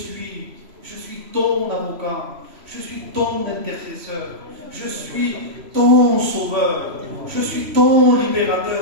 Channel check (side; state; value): left; late; 3.0 ms